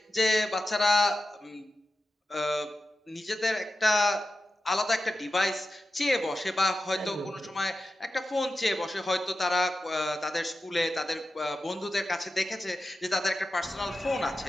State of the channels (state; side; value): normal; both; correlation 0.92